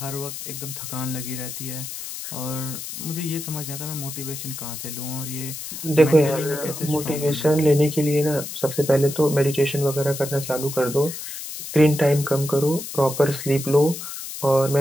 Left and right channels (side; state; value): left; noise; hiss, 9 dB below the sound